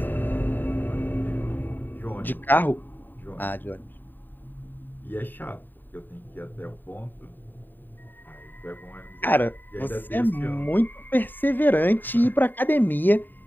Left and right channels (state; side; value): late; right; 0.091 ms